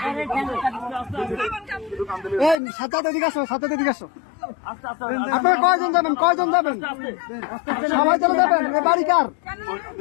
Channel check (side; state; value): right; drops out; at 2.6 s